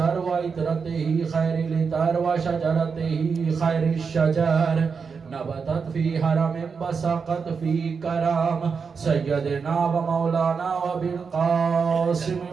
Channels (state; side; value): quieter; left; 5.6 dB